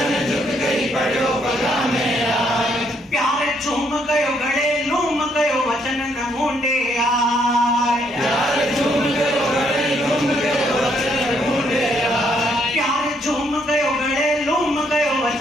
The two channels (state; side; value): normal; both; correlation 0.71